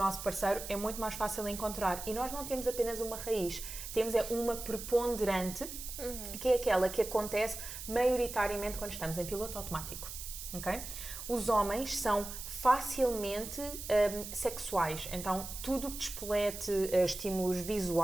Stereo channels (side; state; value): right; noise; hiss, 9 dB below the sound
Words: parceiro, é muito mais fácil encontrar. E nós não temos apenas uma raiz, temos uma preponderante, que é aquela que acontece maioritariamente quando estamos em piloto automático. Okay? Os homens são facilmente sexuais, então tudo que despolete estímulos